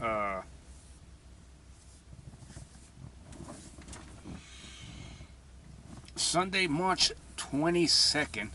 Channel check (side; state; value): both; identical; correlation 1.00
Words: Sunday, March 22nd.